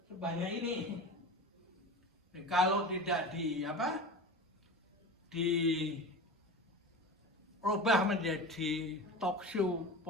sebanyak ini. Dan kalau tidak dirubah menjadi talk show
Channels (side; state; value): both; normal; correlation 0.30